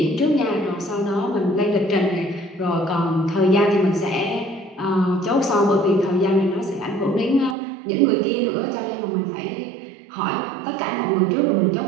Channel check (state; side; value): drops out; left; at 7.6 s